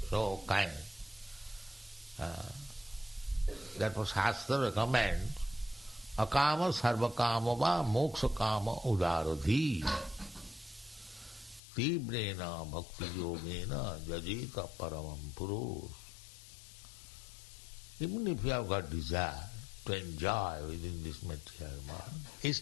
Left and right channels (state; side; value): drops out; right; at 11.6 s